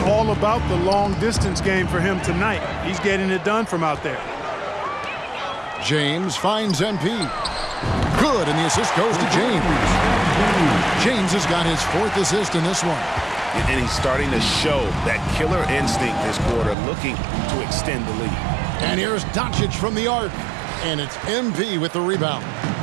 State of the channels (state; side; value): drops out; left; at 16.8 s